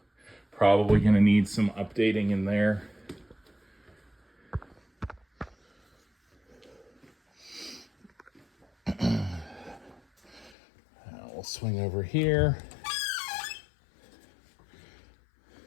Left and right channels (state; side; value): drops out; right; at 10.6 s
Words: probably gonna need some updating in there. We'll swing over here.